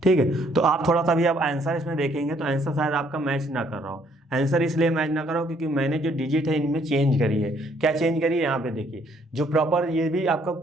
ठीक है, तो आप थोड़ा सा भी आप आंसर इसमें देखेंगे तो आंसर शायद आपका मैच ना कर रहा हो। आंसर इसलिए मैच ना कर रहा हो क्योंकि मैंने जो डिजिट है इनमें चेंज करी है। क्या चेंज करी है, यहाँ पे देखिए, जो प्रॉपर ये भी आपका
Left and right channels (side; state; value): both; normal; correlation 0.66